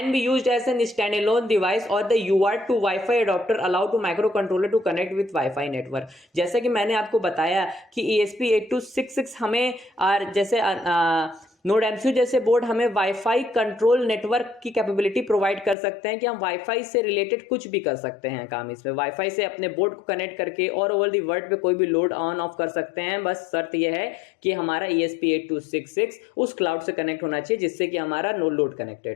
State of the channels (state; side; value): drops out; right; at 15.8 s